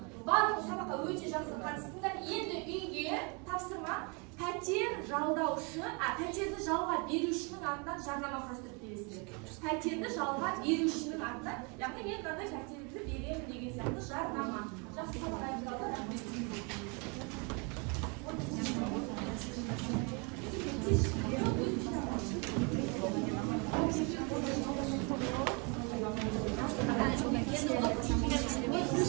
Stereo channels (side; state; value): left; quieter; 32.5 dB